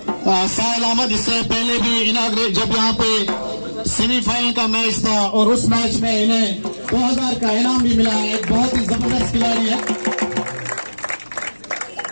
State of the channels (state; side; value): inverted; both; correlation -1.00